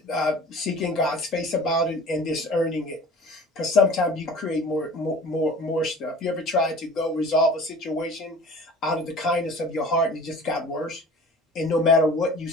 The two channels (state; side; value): normal; both; correlation 0.44